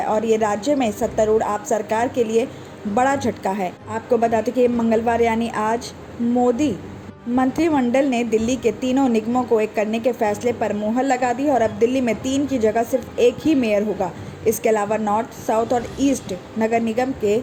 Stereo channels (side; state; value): both; identical; correlation 1.00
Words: और ये राज्य में सत्तारूढ़ आप सरकार के लिए बड़ा झटका है। आपको बताते कि मंगलवार यानी आज मोदी मंत्रिमंडल ने दिल्ली के तीनों निगमों को एक करने के फैसले पर मुहर लगा दी और अब दिल्ली में 3 की जगह सिर्फ एक ही मेयर होगा। इसके अलावा नॉर्थ, साउथ और ईस्ट नगर निगम के